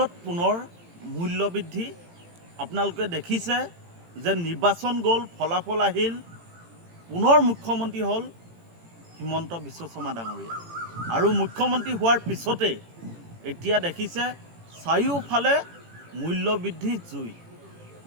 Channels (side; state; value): left; late; 18 ms